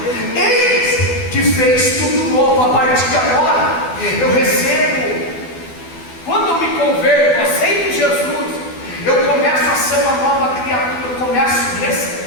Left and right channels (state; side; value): late; right; 12 ms